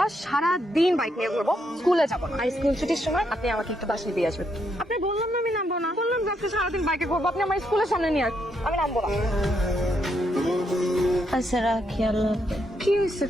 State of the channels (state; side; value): normal; both; correlation 0.77